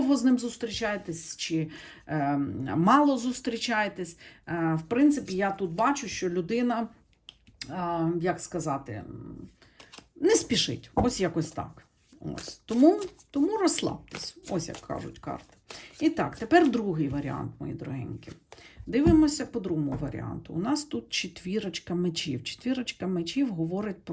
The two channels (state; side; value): identical; both; correlation 1.00